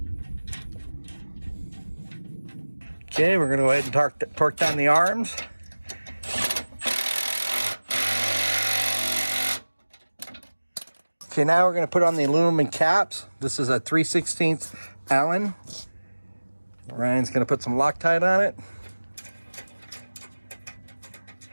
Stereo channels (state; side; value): inverted; both; correlation -1.00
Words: Okay, we're going to go ahead and torque down the arms. Okay, now we're going to put on the aluminum caps. This is a 3/16 Allen. Ryan's going to put some Loctite on it.